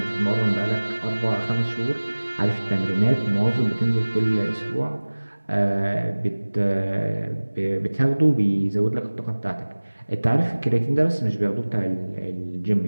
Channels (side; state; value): both; inverted; correlation -1.00